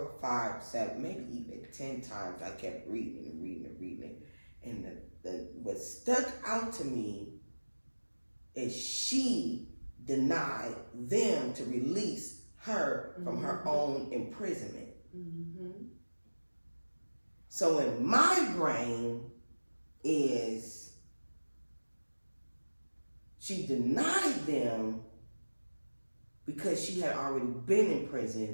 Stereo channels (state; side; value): inverted; both; correlation -1.00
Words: 5, 7, maybe even 10 times. I kept reading and reading and reading. And what stuck out to me is she denied them to release her from her own imprisonment. So in my brain is she denied them because she had already been in